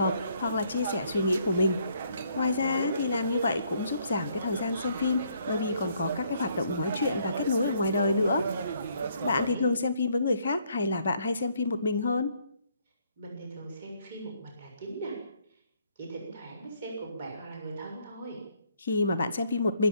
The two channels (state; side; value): inverted; both; correlation -0.69